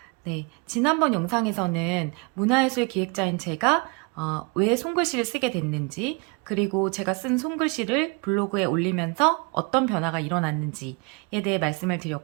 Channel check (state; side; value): quieter; left; 31.3 dB